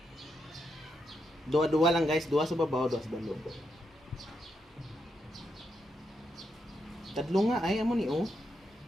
dua-dua lang guys, dua sa babaw, dua sa balog. Tadlo nga ay amo ni oh.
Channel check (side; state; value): both; normal; correlation 0.82